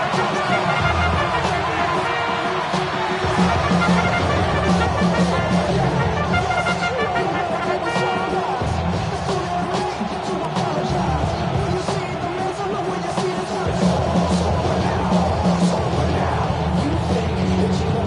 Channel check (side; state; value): both; identical; correlation 1.00